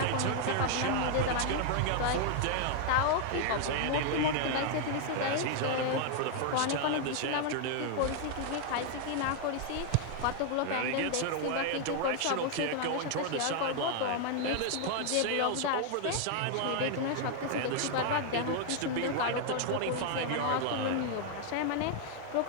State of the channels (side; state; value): both; different; correlation 0.00